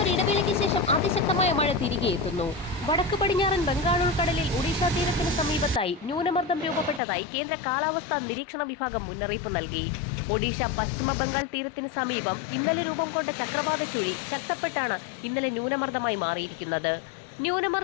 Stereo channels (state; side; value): drops out; right; at 7.0 s